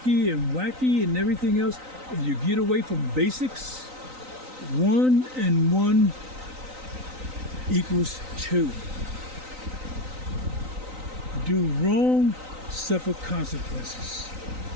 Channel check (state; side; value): late; left; 3.9 ms